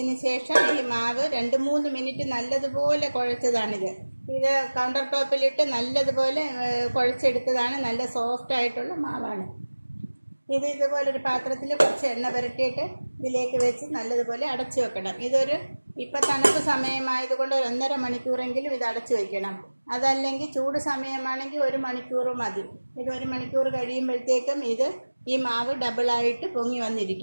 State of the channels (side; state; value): both; inverted; correlation -1.00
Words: ശേഷം ഈ മാവ് 2-3 മിനിറ്റ് നല്ലതുപോലെ കുഴച്ചതാണിത്. ഇത് കൗണ്ടർ ടോപ്പിലിട്ട് നല്ലതുപോലെ കുഴച്ചെടുത്തതാണ്. നല്ല സോഫ്റ്റ് ആയിട്ടുള്ള മാവാണ് ഇത്. ഇതുപോലൊരു പാത്രത്തിൽ കുറച്ച് എണ്ണ പുരട്ടിയിട്ട് ഇതിലേക്ക് വെച്ച് നല്ലതുപോലെ അടച്ചു വെക്കണം. ഇപ്പം തണുപ്പ് സമയമായതുകൊണ്ട് 1.5 മണിക്കൂറെങ്കിലും ഇത് അടച്ചു വയ്ക്കണം. അതല്ലെങ്കിൽ ചൂട് സമയമാണെങ്കിൽ 1 മണിക്കൂർ മതി. ഇത് 1 മണിക്കൂർ കഴിയുമ്പോഴത്തേക്കും ഈ മാവ് ഡബിളായിട്ട് പൊങ്ങി